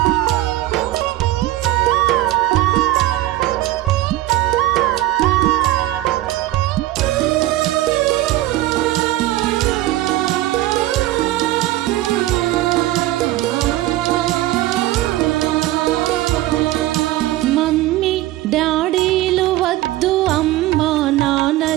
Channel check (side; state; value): left; quieter; 16.1 dB